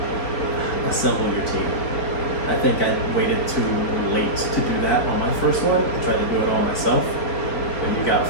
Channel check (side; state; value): right; late; 4.8 ms